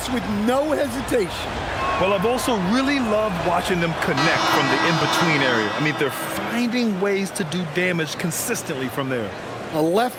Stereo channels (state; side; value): identical; both; correlation 1.00